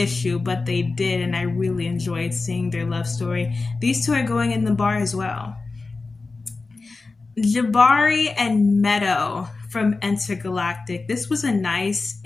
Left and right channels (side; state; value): right; quieter; 3.8 dB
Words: but they did, and I really enjoyed seeing their love story. These two are going in the bar as well. Jabari and Meadow from Intergalactic. This was a nice